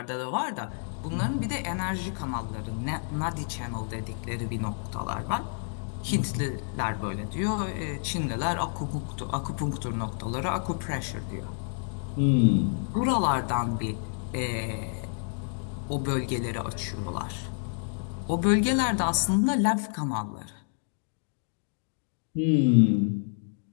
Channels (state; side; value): silent; right; 58 dB below the other